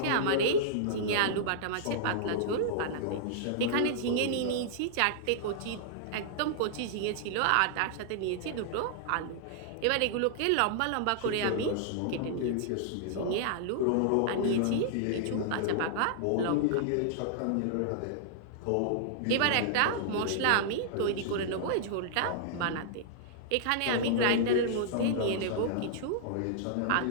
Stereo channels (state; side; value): different; both; correlation -0.01